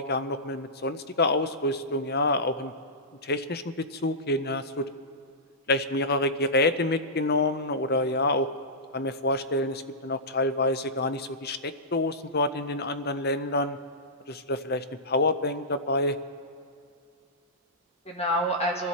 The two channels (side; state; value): both; normal; correlation -0.17